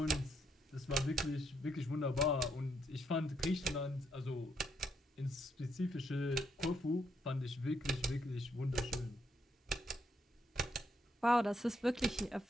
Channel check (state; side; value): normal; both; correlation 0.75